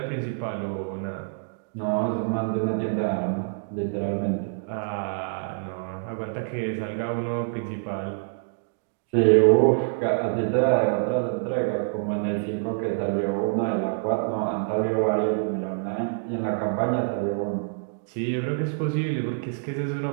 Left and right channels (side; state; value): left; silent; digital silence